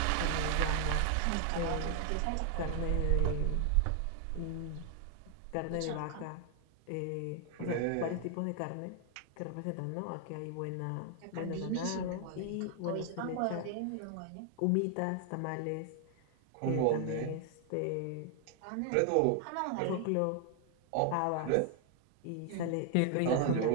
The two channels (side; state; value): both; different; correlation 0.00